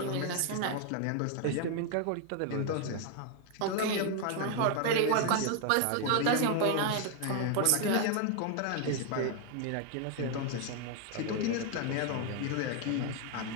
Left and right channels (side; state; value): both; different; correlation 0.00